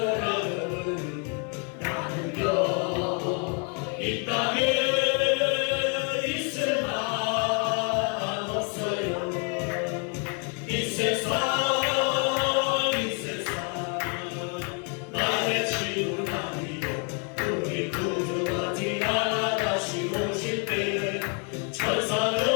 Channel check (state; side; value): quieter; right; 38.2 dB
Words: 나는요 이 땅에 있을 만 없어요. 이 세상